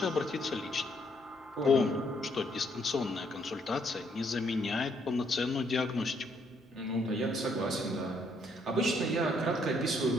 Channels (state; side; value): normal; both; correlation 0.70